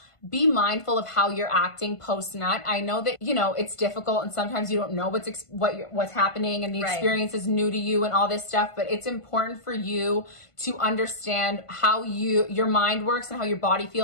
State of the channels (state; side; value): late; right; 1.5 ms